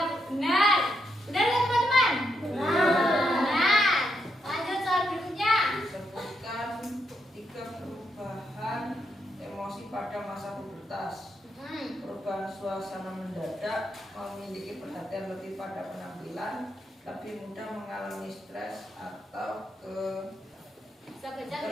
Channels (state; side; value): normal; both; correlation 0.81